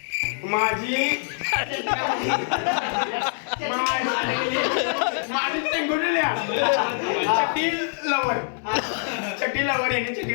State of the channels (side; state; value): right; silent; digital silence